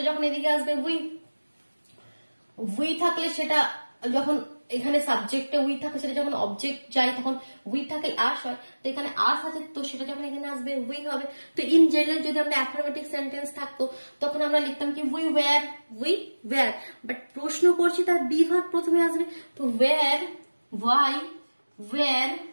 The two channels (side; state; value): both; inverted; correlation -1.00